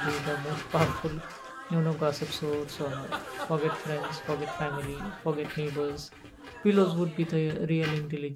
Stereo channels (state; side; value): identical; both; correlation 1.00